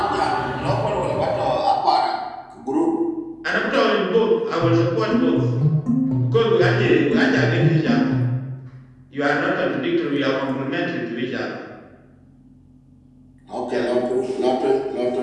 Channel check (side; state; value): both; identical; correlation 1.00